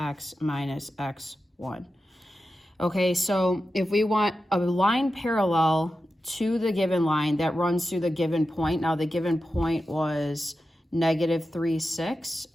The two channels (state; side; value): normal; both; correlation 0.91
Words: minus x1. Okay, so if we want a line parallel to the given line that runs through the given point. Now the given point was negative 3, 6.